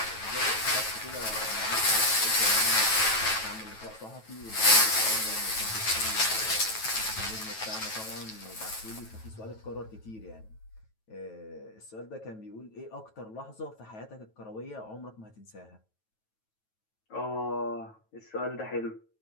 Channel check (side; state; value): right; late; 9.2 ms